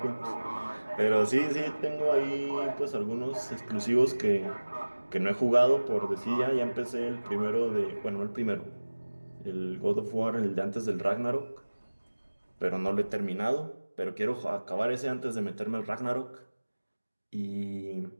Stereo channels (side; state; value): both; inverted; correlation -1.00